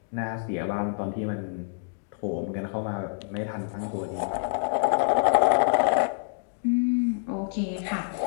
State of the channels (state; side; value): silent; right; digital silence